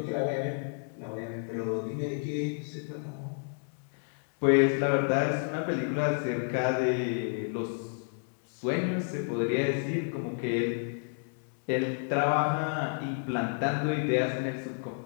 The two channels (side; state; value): right; silent; 57 dB below the other